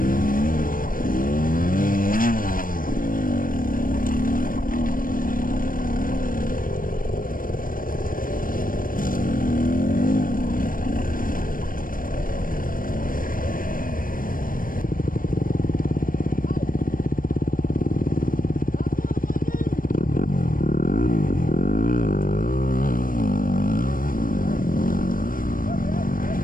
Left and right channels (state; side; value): late; right; 0.40 ms